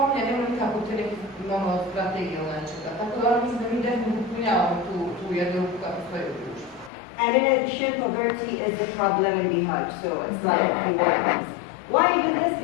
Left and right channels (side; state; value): right; drops out; at 6.9 s